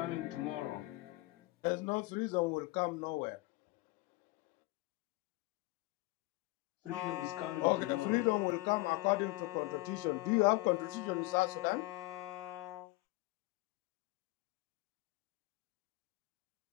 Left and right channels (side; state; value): right; quieter; 21.3 dB